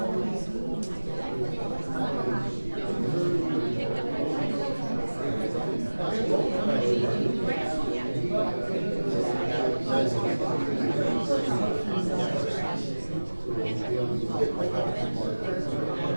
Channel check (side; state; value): both; inverted; correlation -1.00